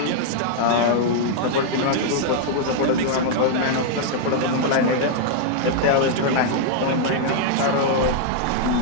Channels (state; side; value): different; both; correlation -0.01